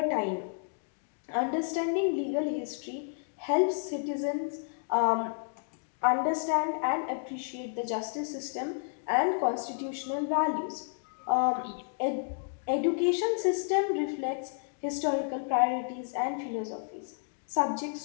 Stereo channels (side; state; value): right; silent; digital silence